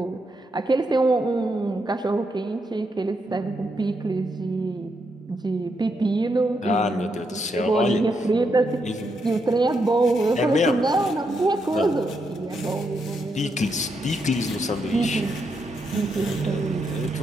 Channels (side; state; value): both; normal; correlation 0.81